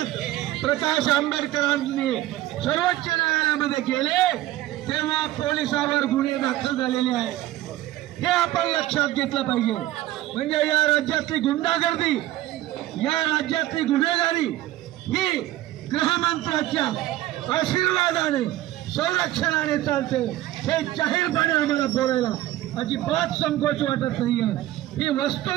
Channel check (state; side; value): quieter; left; 15.0 dB